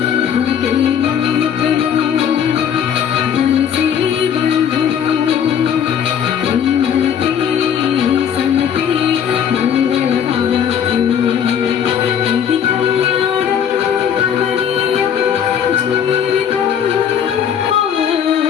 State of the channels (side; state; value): right; quieter; 8.4 dB